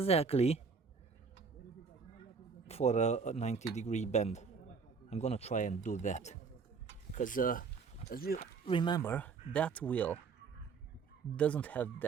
for a 90-degree bend. I'm gonna try and do that because as you remember, that wheel doesn't have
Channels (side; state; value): left; quieter; 5.2 dB